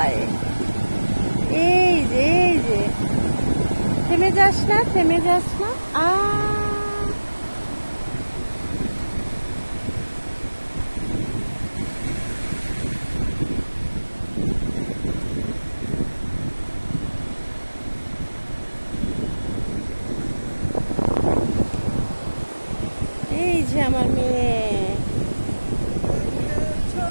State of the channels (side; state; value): both; inverted; correlation -1.00